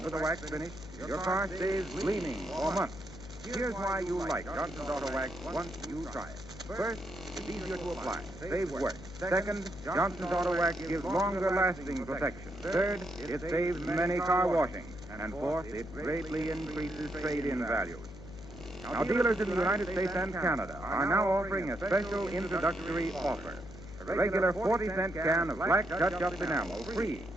the wax finish, your car stays gleaming for months. Here's why you like Johnson's Auto Wax once you try it. First, it's easier to apply, saves work. Second, Johnson's Auto Wax gives longer-lasting protection. Third, it saves many car washings. And fourth, it greatly increases trade-in values. Now, dealers in the United States and Canada are now offering a special introductory offer. A regular 40-cent can of black touch-up enamel free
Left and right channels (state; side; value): noise; left; hum, 15 dB below the sound